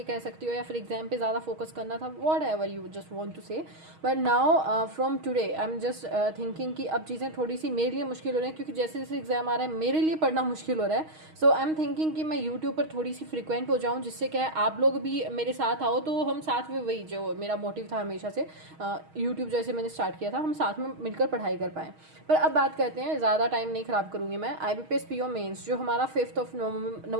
कह सकती हो, या फिर एग्जाम पे ज़्यादा फोकस करना था, whatever you just want to say. But now from today I am just thinking कि अब चीज़ें थोड़ी सी मेरे लिए मुश्किल हो रही हैं, क्योंकि जैसे जैसे एग्जाम आ रहा है मेरे लिए पढ़ना मुश्किल हो रहा है. सो आई एम थिंकिंग कि मैं यूट्यूब पर थोड़ी सी फ्रिक्वेंट हो जाऊँ, जिससे क्या है आप लोग भी मेरे साथ आओ, तो हम साथ में, वही जो मेरा मोटिव था हमेशा से यूट्यूब जैसे मैंने स्टार्ट किया था, हम साथ में मिलकर पढ़ाई कर पाएँ. पर अब बात करते हैं, ज़्यादा टाइम नहीं ख़राब करूँगी मैं. IBPS PO मेंस जो हमारा 5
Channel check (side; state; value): left; late; 6.4 ms